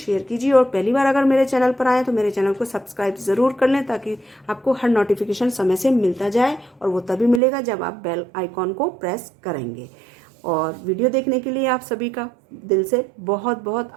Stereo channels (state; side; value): drops out; left; at 7.4 s